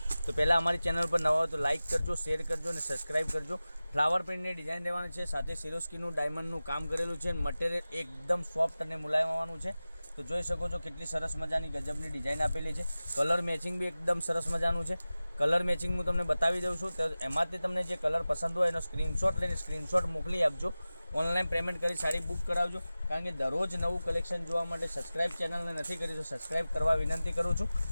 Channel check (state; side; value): inverted; both; correlation -0.97